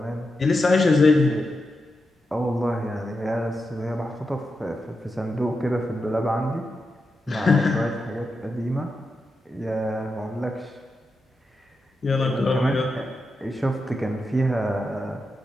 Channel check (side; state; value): both; normal; correlation 0.88